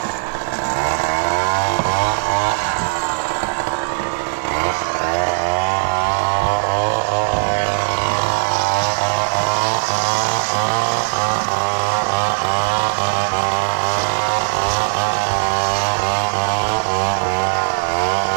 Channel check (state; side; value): silent; left; 58 dB below the other